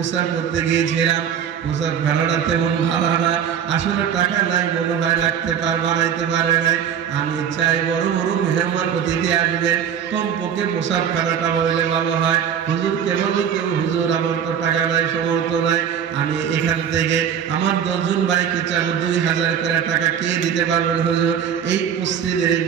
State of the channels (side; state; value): left; quieter; 8.3 dB